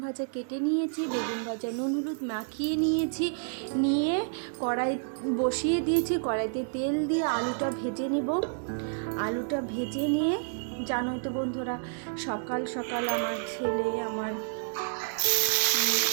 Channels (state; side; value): silent; left; digital silence